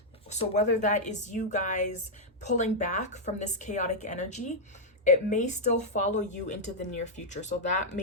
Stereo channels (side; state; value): both; normal; correlation -0.04